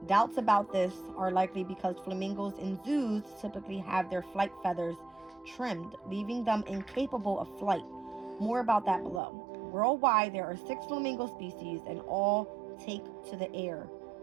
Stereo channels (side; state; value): left; drops out; at 9.2 s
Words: Doubts about this are likely because flamingos in zoos typically have their flight feathers trimmed, leaving them incapable of flight. More about that below. Worldwide, there are 6 flamingo species and all take to the air.